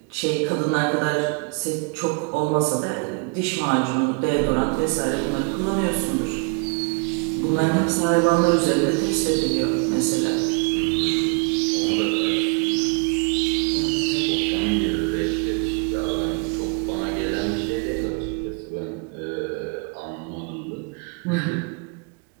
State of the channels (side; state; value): left; quieter; 32.7 dB